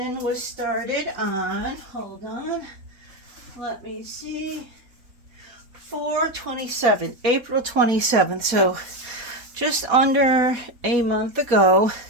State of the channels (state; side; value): late; left; 4.1 ms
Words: was started on, hold on, let me see, 4/27, April 27th, so just under a month ago.